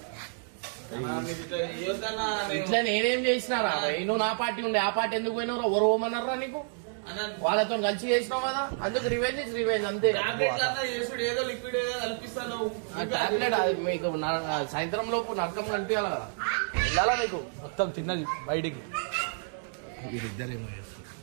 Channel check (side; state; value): left; silent; digital silence